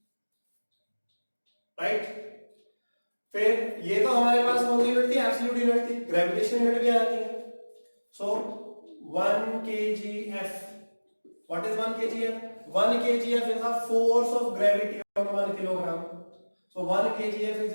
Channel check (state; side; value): inverted; both; correlation -1.00